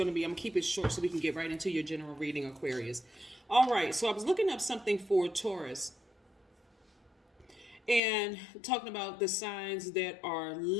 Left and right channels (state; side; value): drops out; right; at 8.0 s